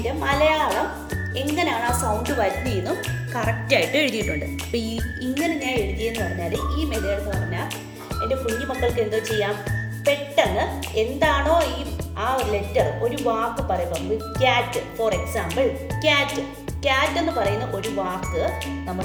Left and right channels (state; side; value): identical; both; correlation 1.00